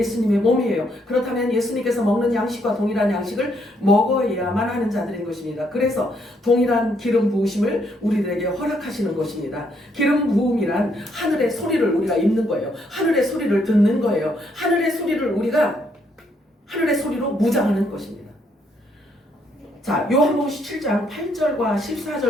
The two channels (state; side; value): normal; both; correlation 0.72